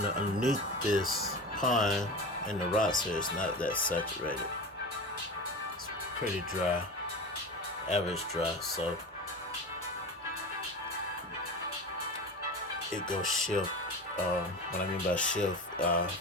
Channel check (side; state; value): both; normal; correlation 0.29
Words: this pond and the rocks here, it's not that saturated. It's pretty dry, average dry, so it goes shift. What I mean by shift,